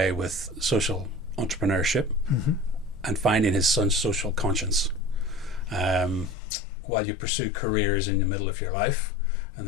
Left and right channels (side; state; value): right; drops out; at 6.4 s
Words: with social entrepreneurship. Mm-hmm. And finding his son's social conscience while you pursue careers in the middle of your life and